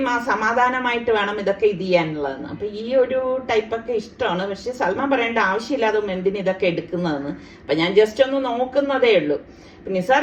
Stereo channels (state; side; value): identical; both; correlation 1.00